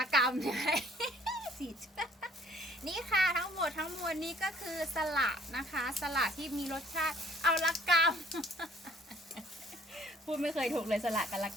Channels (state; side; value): normal; both; correlation 0.57